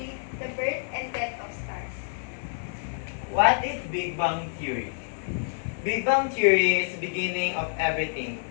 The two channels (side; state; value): right; silent; digital silence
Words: the birth and death of stars. What is Big Bang Theory? Big Bang Theory is the beginning of everything.